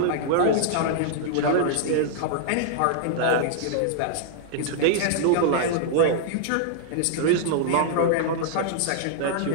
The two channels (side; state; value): both; different; correlation -0.01